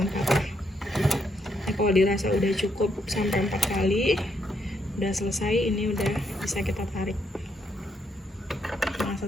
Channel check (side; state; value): both; normal; correlation 0.76